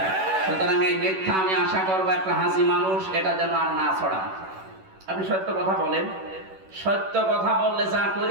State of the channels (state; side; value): late; left; 11 ms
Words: সুতরাং এই মিথ্যা আমি আশা করবো একটা হাসি মানুষ এটা যেন আর না ছড়ায়। আপনি সত্য কথা বলেন। সত্য কথা বললে যা